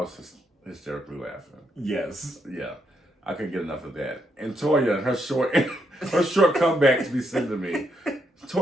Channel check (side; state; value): both; normal; correlation 0.78